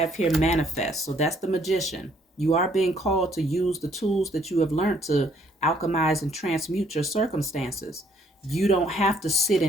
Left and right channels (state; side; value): normal; both; correlation 0.65